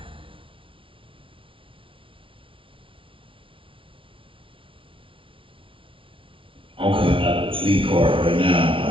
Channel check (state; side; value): late; left; 0.25 ms